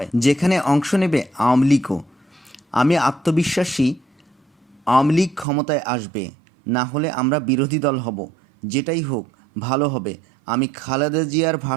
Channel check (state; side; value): drops out; left; at 5.5 s